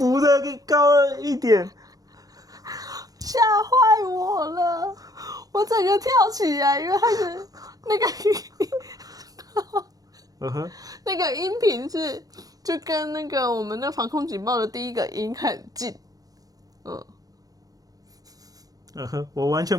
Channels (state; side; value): late; left; 0.18 ms